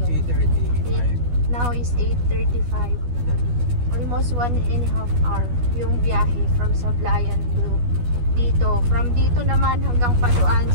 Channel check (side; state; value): left; late; 12 ms